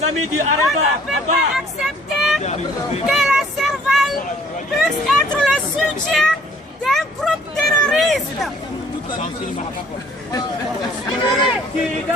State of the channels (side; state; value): both; normal; correlation 0.58